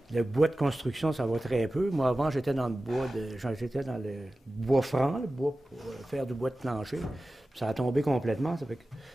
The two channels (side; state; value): both; normal; correlation 0.95